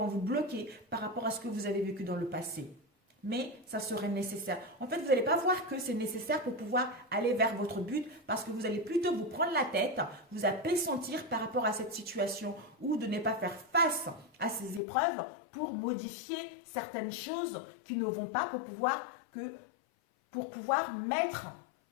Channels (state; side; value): drops out; right; at 14.8 s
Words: vous bloquer par rapport à ce que vous avez vécu dans le passé. Mais ça serait nécessaire. En fait, vous n'allez pas voir que c'est nécessaire pour pouvoir aller vers votre but parce que vous allez plutôt vous prendre la tête, vous appessentir par rapport à cette situation ou de ne pas faire face à ces épreuves pour modifier certaines choses qui ne vont pas pour pouvoir mettre